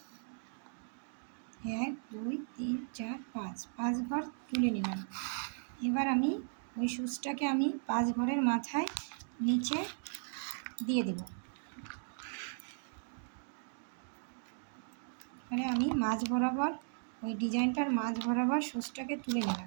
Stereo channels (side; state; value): left; silent; digital silence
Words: 1 2 3 4 5 ঘর তুলে নিলাম। এবার আমি ওই সুচটাকে আমি 5 ঘরের মাথায় নিচে দিয়ে দেব। এবারে আমি মাঝ বরাবর ওই ডিজাইনটার মাঝ বরাবর সুচটাকে তুলে